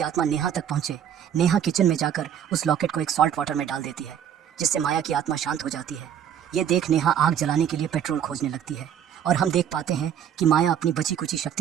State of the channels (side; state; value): left; quieter; 9.2 dB